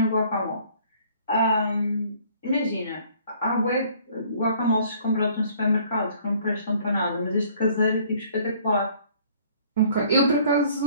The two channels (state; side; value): inverted; both; correlation -0.57